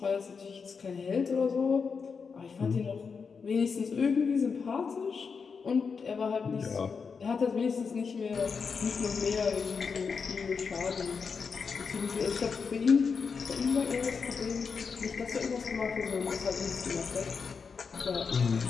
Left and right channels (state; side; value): quieter; right; 5.5 dB